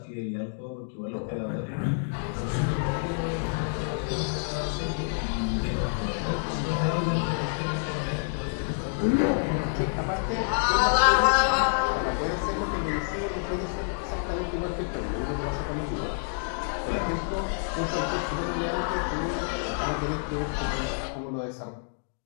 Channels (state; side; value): silent; right; digital silence